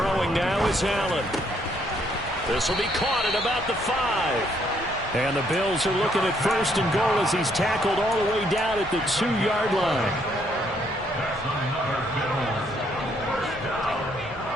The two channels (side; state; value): both; normal; correlation 0.70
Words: now is Allen. This will be caught at about the 5. And the Bills are looking at 1st and goal as he's tackled all the way down at the 2-yard line.